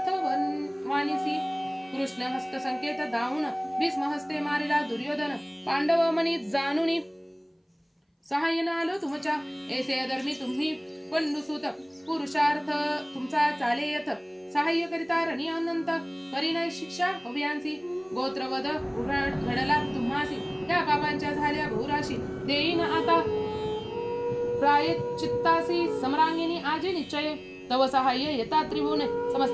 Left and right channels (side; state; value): both; identical; correlation 1.00